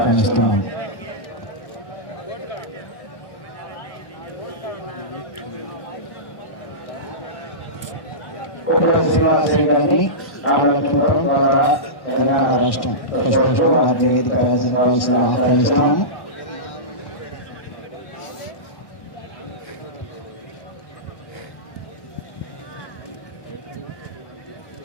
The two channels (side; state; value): right; late; 1.1 ms